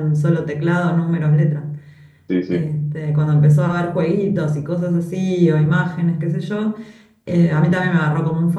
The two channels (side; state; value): both; identical; correlation 1.00